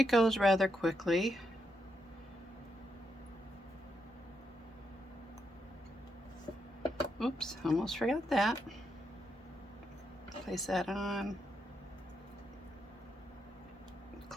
goes rather quickly. Oops, almost forgot that. Place that on.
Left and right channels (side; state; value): both; normal; correlation 0.81